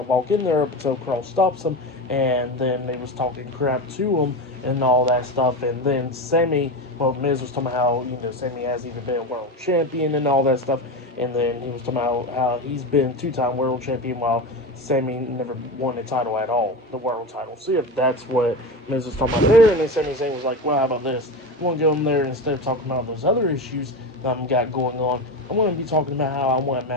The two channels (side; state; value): both; normal; correlation 0.22